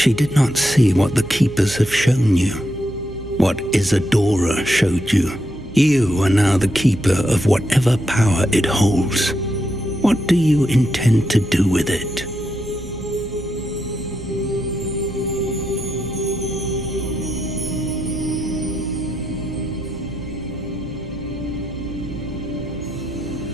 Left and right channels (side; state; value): right; noise; hum, 15 dB below the sound